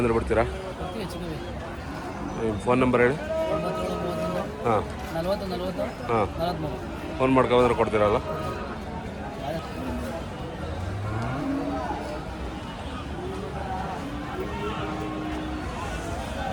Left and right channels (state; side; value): identical; both; correlation 1.00